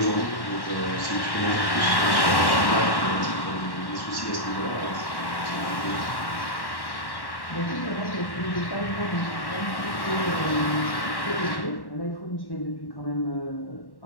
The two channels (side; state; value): right; late; 1.1 ms